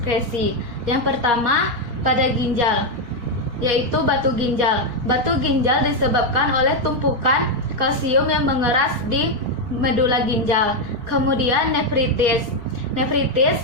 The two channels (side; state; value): left; late; 4.2 ms